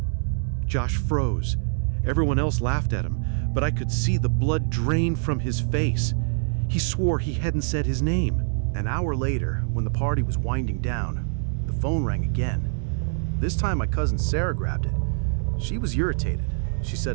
Josh froze. Everyone else laughed at him, but I could see the blood drain from his face. He swore he hadn't said his name. An hour later, when the party was winding down, the phone rang again. This time my cousin Sarah grabbed it. She was irritated. She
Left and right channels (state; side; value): silent; left; 62 dB below the other